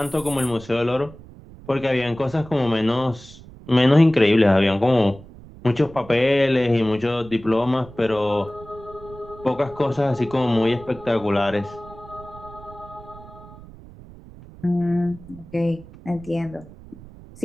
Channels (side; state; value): right; noise; rumble, 19 dB below the sound